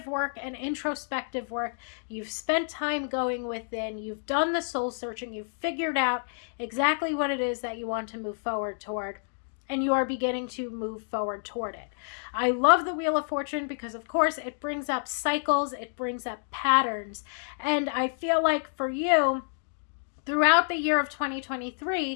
work and introspective work. You've spent time going within. You've done the soul searching. You've figured out exactly what it is that you want to move forward toward. And you are beginning to move forward toward it. I love the Wheel of Fortune because, of course, it brings up cycles, it brings up patterns. And I feel like for you, throughout the year of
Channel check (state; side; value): silent; right; digital silence